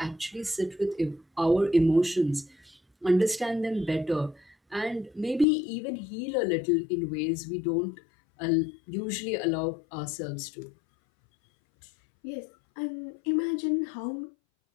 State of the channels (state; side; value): drops out; right; at 5.5 s